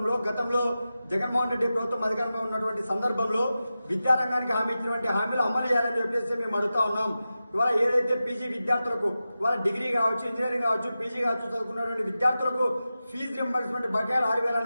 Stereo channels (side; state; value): both; inverted; correlation -0.93